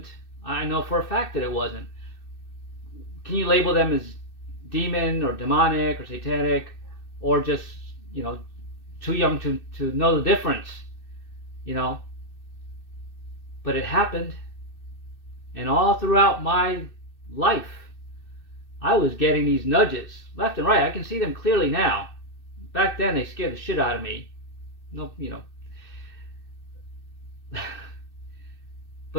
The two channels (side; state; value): right; late; 2.6 ms